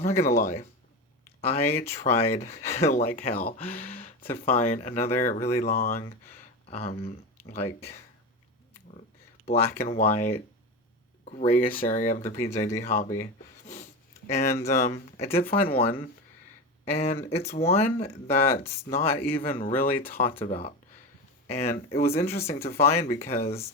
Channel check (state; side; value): normal; both; correlation 0.22